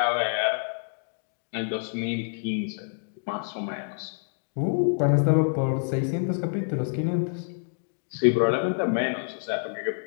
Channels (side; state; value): right; silent; digital silence